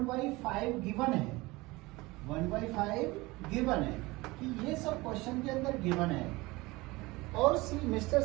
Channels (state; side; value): quieter; left; 21.9 dB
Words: गिवन है। 1/5 गिवन है कि ये सब क्वेश्चन के अंदर गिवन है। और सी मिस्टर